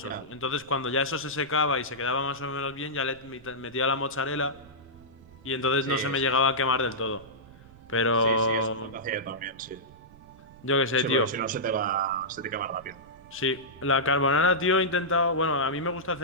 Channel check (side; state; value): right; noise; rumble, 22 dB below the sound